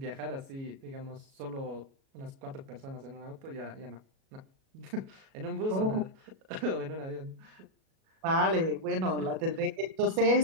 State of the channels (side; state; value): left; late; 37 ms